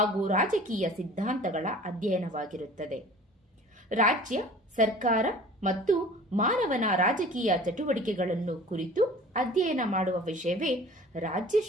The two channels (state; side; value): normal; both; correlation 0.44